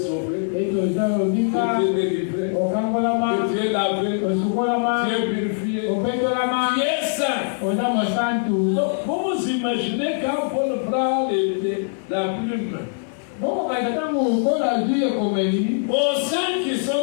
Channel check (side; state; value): right; silent; digital silence